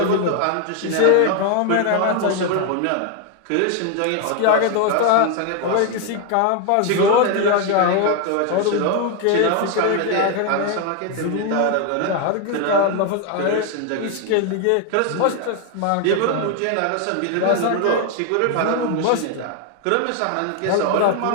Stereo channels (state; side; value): different; both; correlation 0.01